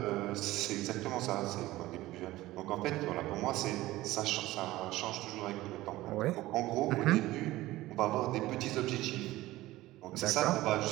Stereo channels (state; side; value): quieter; left; 17.2 dB